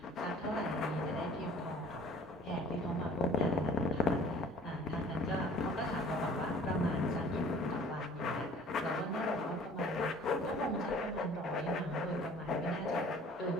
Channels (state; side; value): normal; both; correlation 0.51